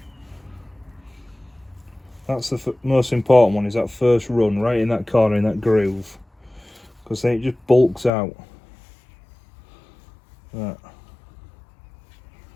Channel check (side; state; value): right; drops out; at 8.1 s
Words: That's the most important one, is that first run right in that corner, in that groove, because then it just bulks out. That.